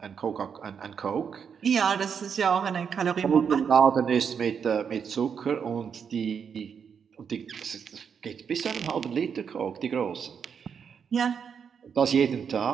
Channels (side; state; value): left; quieter; 6.9 dB